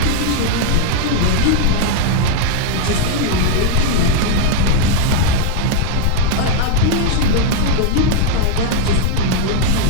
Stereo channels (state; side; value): different; both; correlation 0.00